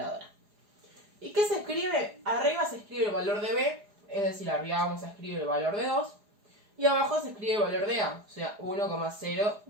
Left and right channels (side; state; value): left; late; 4.8 ms